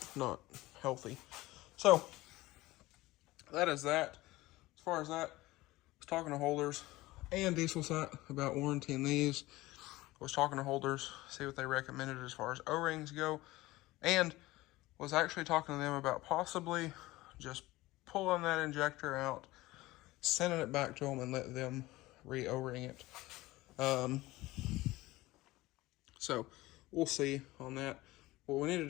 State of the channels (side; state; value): right; quieter; 18.8 dB